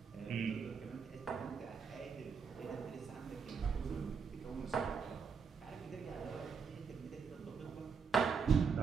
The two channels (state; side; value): quieter; left; 5.8 dB